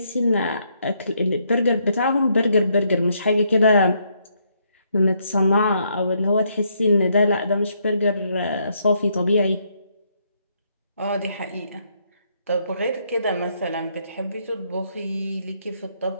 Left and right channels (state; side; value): inverted; both; correlation -0.74